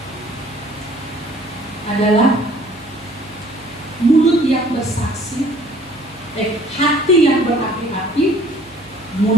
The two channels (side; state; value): right; noise; hum, 25 dB below the sound